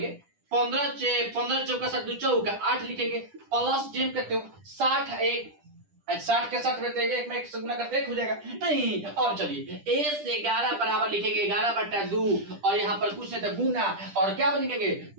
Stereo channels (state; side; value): late; left; 10 ms